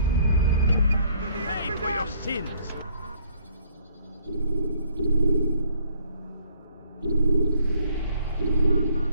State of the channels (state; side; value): inverted; both; correlation -0.63